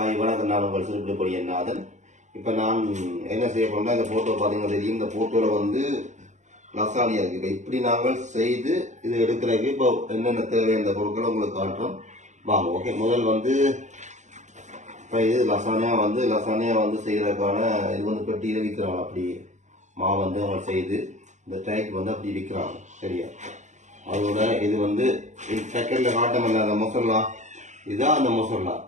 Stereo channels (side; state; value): left; late; 0.35 ms